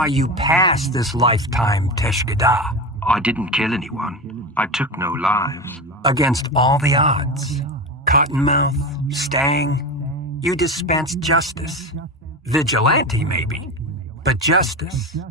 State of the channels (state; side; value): normal; both; correlation 0.23